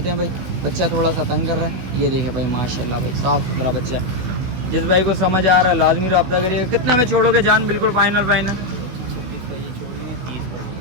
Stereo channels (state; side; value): late; left; 16 ms